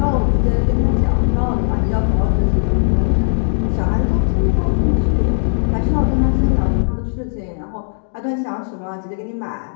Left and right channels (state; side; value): silent; right; digital silence